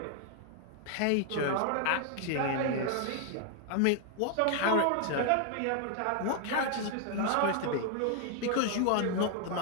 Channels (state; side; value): different; both; correlation 0.00